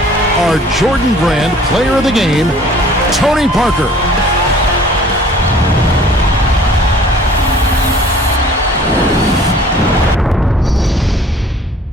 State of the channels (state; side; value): normal; both; correlation 0.52